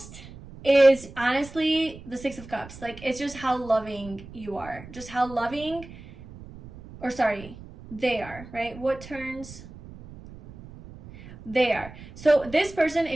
is honestly the Six of Cups. Like, it's just how loving you are. Just how loving, or sorry, they are, right? What turns? They are. So this person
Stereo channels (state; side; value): noise; right; rumble, 17 dB below the sound